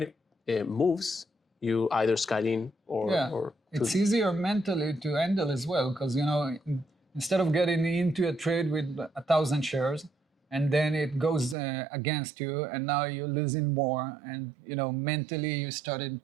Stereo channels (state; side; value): drops out; left; at 11.6 s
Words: moves, you either scale in or it's easier mentally to handle as well because instead of getting into a trade with 1,000 shares and then it goes against you and now you're losing more and mentally you started